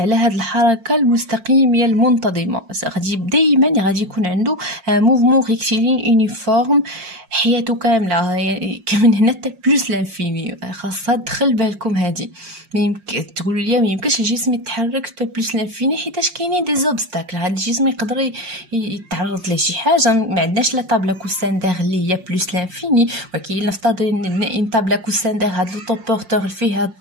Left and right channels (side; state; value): left; late; 5.6 ms